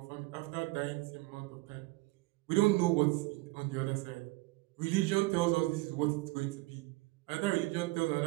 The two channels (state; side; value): quieter; left; 21.8 dB